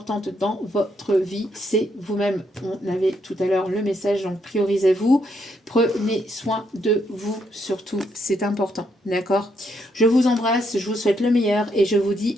dans votre vie, c'est vous-même. On avait tout à l'heure le message, donc priorisez-vous. Prenez soin de vous, surtout, c'est important, d'accord? Je vous embrasse, je vous souhaite le meilleur et je vous dis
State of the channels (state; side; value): normal; both; correlation 0.76